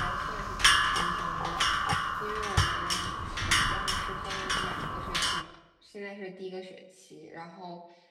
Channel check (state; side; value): identical; both; correlation 1.00